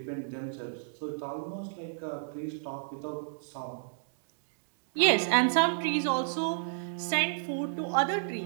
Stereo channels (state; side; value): silent; left; digital silence